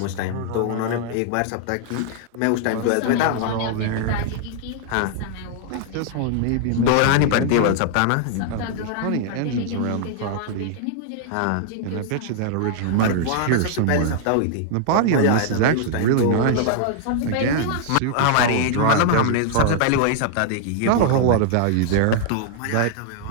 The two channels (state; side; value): different; both; correlation 0.00